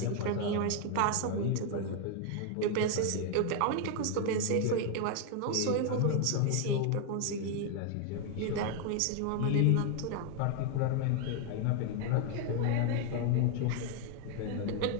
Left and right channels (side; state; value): both; different; correlation 0.00